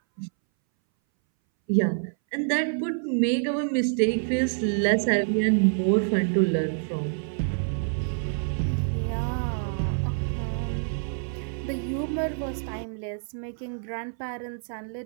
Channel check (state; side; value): silent; left; 60 dB below the other